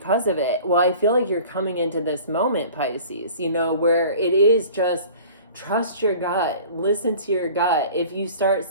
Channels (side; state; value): both; inverted; correlation -0.44